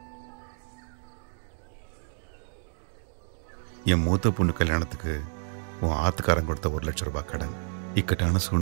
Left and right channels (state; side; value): silent; left; digital silence